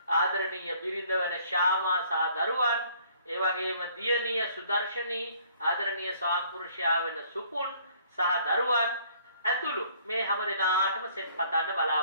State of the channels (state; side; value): inverted; both; correlation -0.60